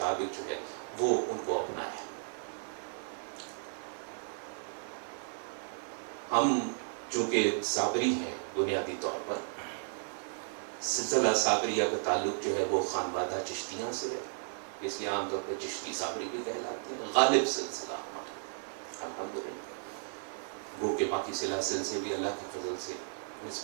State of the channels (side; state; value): left; silent; 55 dB below the other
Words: جو ہے وہ ان کو اپنایا. ہم چونکہ صابری ہیں بنیادی طور پر، سلسلہ صابریہ کا تعلق جو ہے وہ خانوادہ چشتیاں سے ہے، اس لیے عام طور پہ چشتی صابری بھی کہلاتے ہیں. غالب سلسلہ ہمارا الحمدللہ، وہ کہ باقی سلاسل سے بھی اللہ کے فضل سے